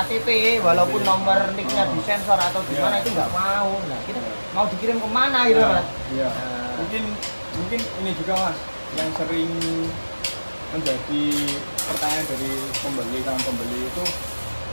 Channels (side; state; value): both; inverted; correlation -1.00